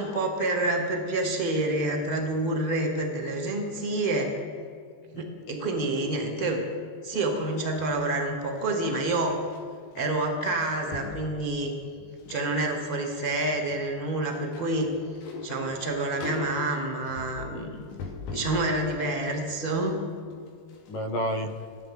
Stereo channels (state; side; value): late; right; 20 ms